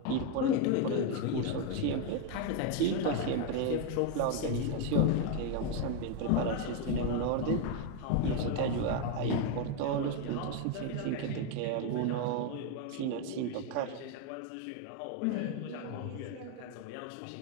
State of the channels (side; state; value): both; different; correlation 0.01